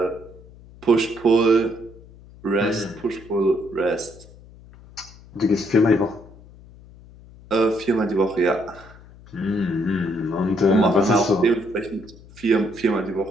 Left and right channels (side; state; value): left; noise; hum, 22 dB below the sound